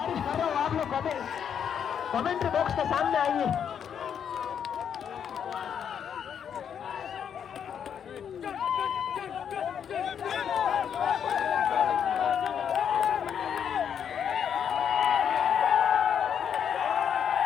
কমেন্ট্री बॉक्स के सामने आइए।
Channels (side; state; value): right; quieter; 8.2 dB